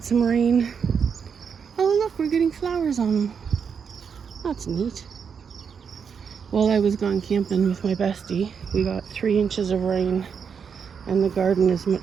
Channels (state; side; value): quieter; left; 6.6 dB